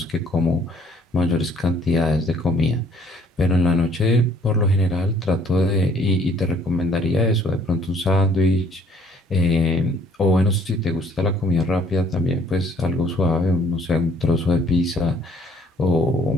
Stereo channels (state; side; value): normal; both; correlation 0.60